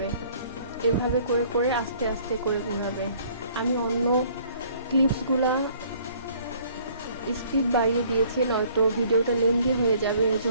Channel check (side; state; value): both; inverted; correlation -0.58